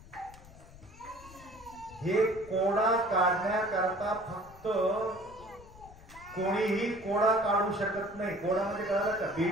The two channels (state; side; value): noise; left; rumble, 20 dB below the sound